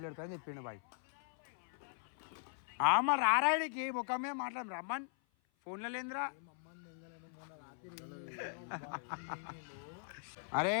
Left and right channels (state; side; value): silent; right; 51 dB below the other